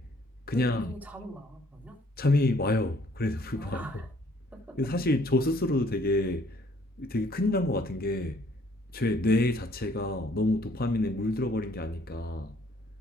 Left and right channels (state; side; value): normal; both; correlation 0.62